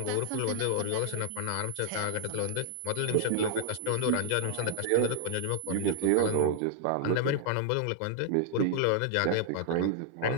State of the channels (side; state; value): both; different; correlation -0.01